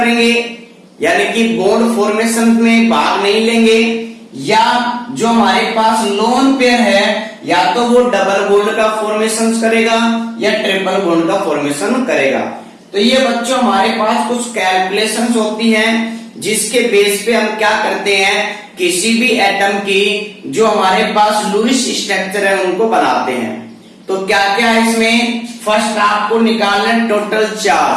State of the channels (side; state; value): both; identical; correlation 1.00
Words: यानी कि बॉन्ड फॉर्मेशन में भाग नहीं लेंगे, या जो हमारे पास लोन पेयर है या तो वो डबल बॉन्ड का फॉर्मेशन करेगा या ट्रिपल बॉन्ड का फॉर्मेशन करेगा। तो ये बच्चों हमारे पास कुछ कैलकुलेशंस होती हैं जिसके बेस पे हम क्या करते हैं, किसी भी एटम की जो हमारे पास लुईस स्ट्रक्चर है उनको बनाते हैं। तो क्या क्या है इसमें, फर्स्ट आपको निकालना है टोटल